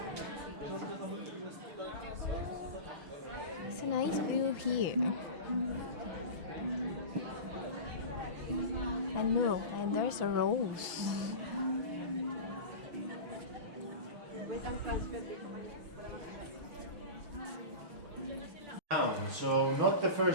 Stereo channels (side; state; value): left; late; 6.1 ms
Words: It's a nice view here. And look, and there's a rose. So not the